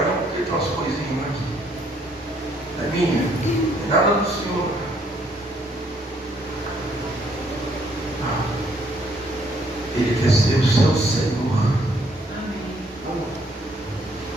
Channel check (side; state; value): both; normal; correlation 0.67